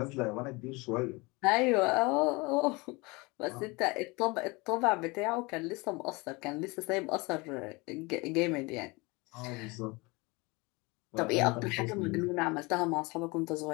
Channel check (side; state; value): right; quieter; 25.7 dB